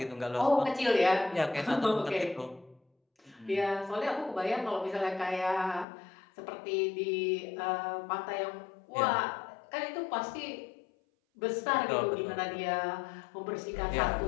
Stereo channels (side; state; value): right; drops out; at 5.9 s